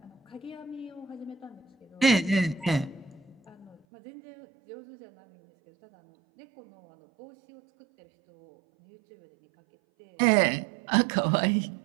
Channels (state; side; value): drops out; left; at 3.8 s